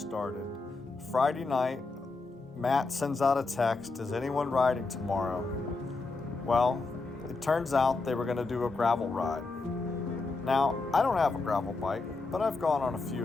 Friday night, Matt sends out a text, is anyone riding tomorrow? Well, it turns out they were going to do a gravel ride. Now, I don't have a gravel bike, but I've gone on a few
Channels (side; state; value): right; quieter; 3.7 dB